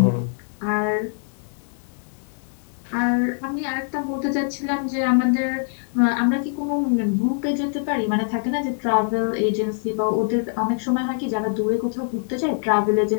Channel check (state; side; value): silent; right; 63 dB below the other